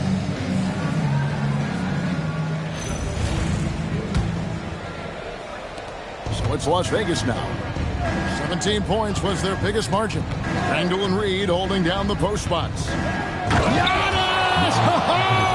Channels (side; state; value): both; identical; correlation 1.00